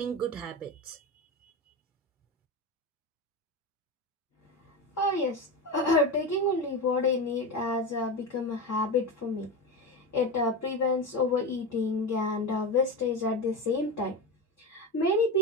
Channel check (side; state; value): both; normal; correlation 0.20